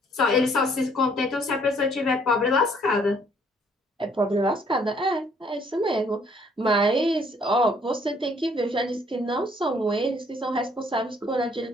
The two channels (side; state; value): both; normal; correlation 0.64